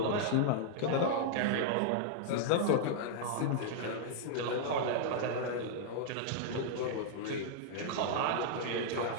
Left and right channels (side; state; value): both; different; correlation -0.01